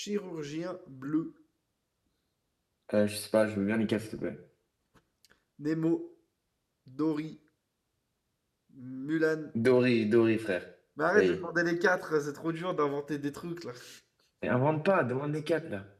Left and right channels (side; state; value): both; identical; correlation 1.00